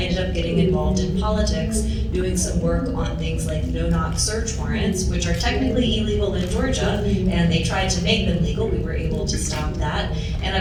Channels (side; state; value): both; identical; correlation 1.00